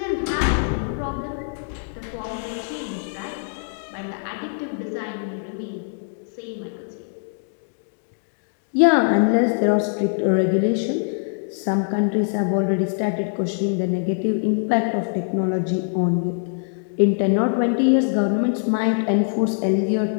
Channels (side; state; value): right; silent; digital silence